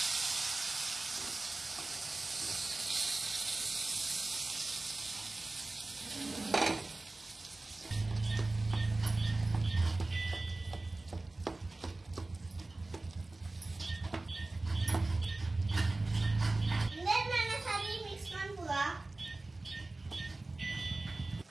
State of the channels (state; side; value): quieter; left; 3.1 dB